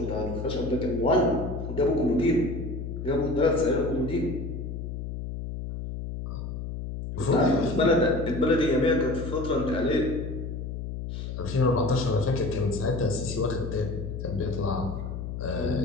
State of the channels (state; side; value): noise; left; hum, 6 dB below the sound